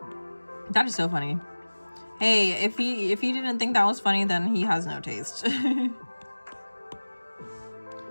That is so funny. Hey, if he didn't think that was funny, then he has no taste.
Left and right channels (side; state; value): both; inverted; correlation -1.00